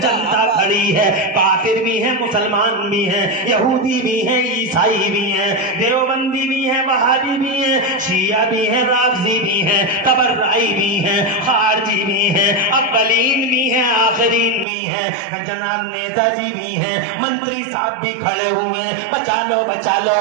खड़ी है। काफिर भी हैं, मुसलमान भी हैं, यहूदी भी हैं, ईसाई भी हैं, देवबंदी भी हैं, वहाबी भी हैं, शिया भी हैं, राफजी भी हैं, तबर्राई भी हैं, खारजी भी हैं, अव्वलीन भी हैं, आखिरीन भी हैं, जनाब नेताजी भी हैं, मंत्री साहब भी खड़े हुए, बचा लो बचा लो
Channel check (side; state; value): left; drops out; at 14.7 s